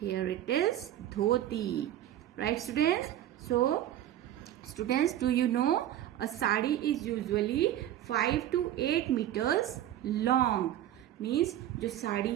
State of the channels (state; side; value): quieter; left; 12.3 dB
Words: it is dhoti. Right, students? So, students, do you know a sari is usually 5 to 8 meters long. Means जो